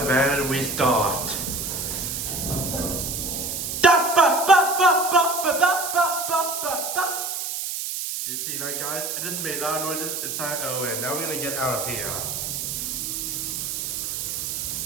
then we start. Did you see that, guys? I just made loud noises inside an elevator. Now we're gonna get out of here.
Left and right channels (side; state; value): right; noise; hiss, 3 dB below the sound